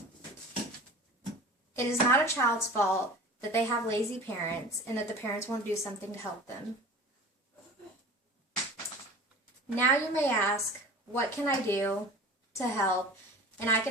It is not a child's fault that they have lazy parents and that the parents won't do something to help them. Now you may ask, what can I do to help? And I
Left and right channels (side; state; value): both; normal; correlation 0.39